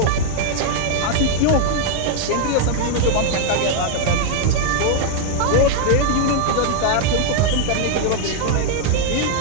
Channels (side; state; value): both; different; correlation 0.00